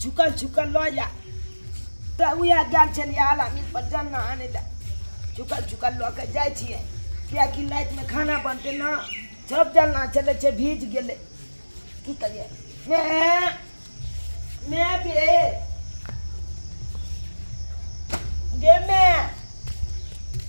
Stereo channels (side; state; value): both; inverted; correlation -1.00